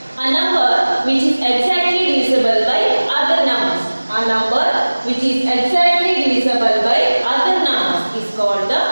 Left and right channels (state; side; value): inverted; both; correlation -1.00